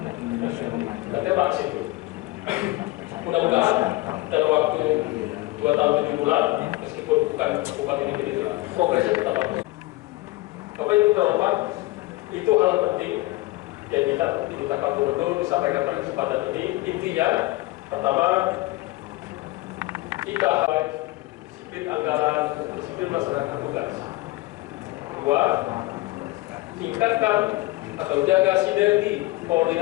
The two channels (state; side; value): quieter; right; 20.1 dB